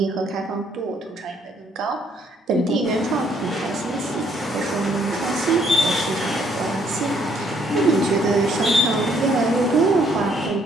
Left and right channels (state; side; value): normal; both; correlation 0.67